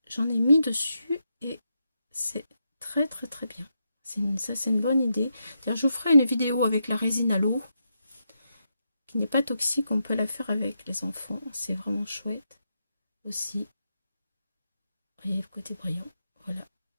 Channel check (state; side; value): inverted; both; correlation -0.84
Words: j'en ai mis dessus et c'est très très très bien. Ça c'est une bonne idée. Je vous ferai une vidéo avec la résine à l'eau qui n'est pas toxique. On peut la faire avec les enfants. C'est vraiment chouette aussi. Vous voyez le côté brillant. Voilà.